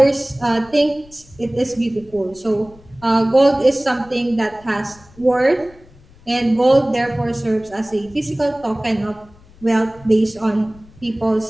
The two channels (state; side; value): noise; left; rumble, 25 dB below the sound